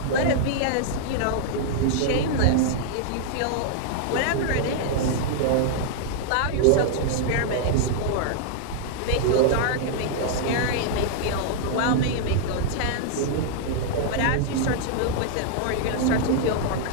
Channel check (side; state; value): both; different; correlation -0.01